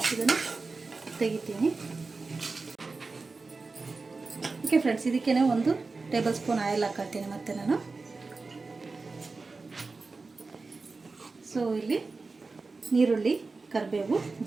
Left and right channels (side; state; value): left; quieter; 3.9 dB